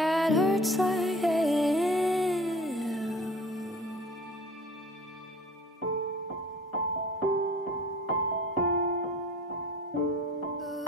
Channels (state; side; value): normal; both; correlation 0.45